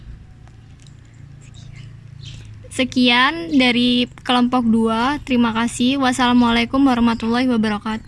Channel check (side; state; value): both; identical; correlation 1.00